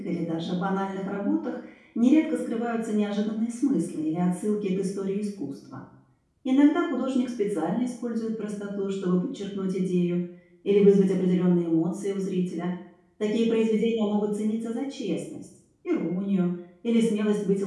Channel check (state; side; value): identical; both; correlation 1.00